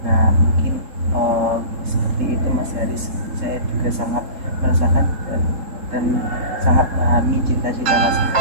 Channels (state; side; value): late; left; 3.7 ms